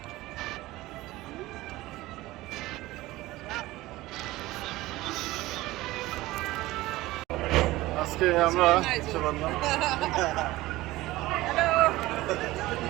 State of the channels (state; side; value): quieter; left; 18.2 dB